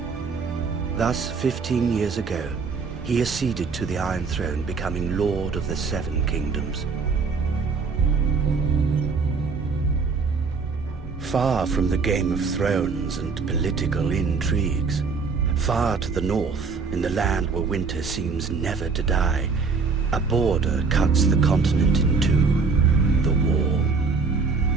Thus, 15 years ago, he acceded to the Iron Throne, becoming Lord of the Seven Kingdoms. Far from the Game of Thrones and political intrigues, far to the north, in the land where winter seems never to die, a border cuts the continent in two, the Wall.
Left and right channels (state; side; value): quieter; left; 4.8 dB